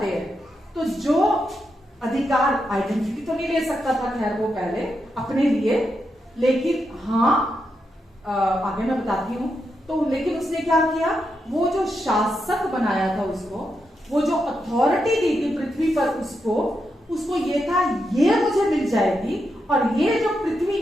हैं, तो जो अधिकार, आइडेंटिटी तो नहीं ले सकता था खैर वो पहले अपने लिए, लेकिन हाँ आगे मैं बताती हूं। तो लेकिन उसने क्या किया, वो जो शासक बनाया था उसको, वो जो अथॉरिटी दी थी पृथ्वी पर उसको ये था, ये मुझे मिल जाएगी, और ये जो पृथ्वी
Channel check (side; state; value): both; normal; correlation 0.84